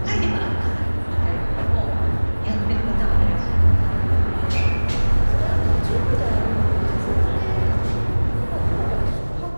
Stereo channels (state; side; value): inverted; both; correlation -1.00